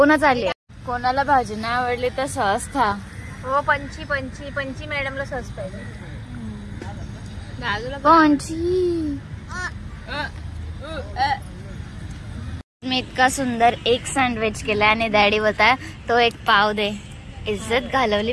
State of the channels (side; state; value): both; identical; correlation 1.00